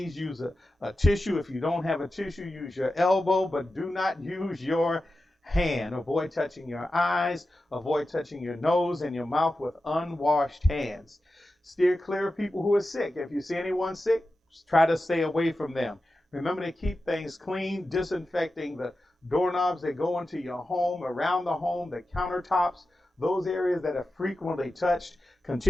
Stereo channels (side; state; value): both; normal; correlation 0.92